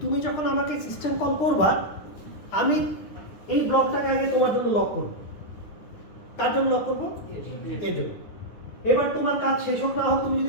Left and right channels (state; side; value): late; right; 9.7 ms